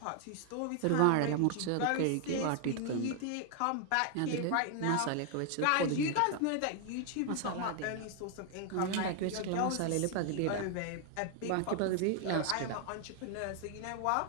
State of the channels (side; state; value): both; different; correlation 0.00